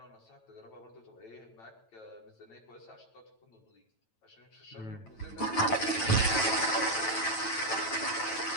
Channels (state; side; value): late; right; 9.0 ms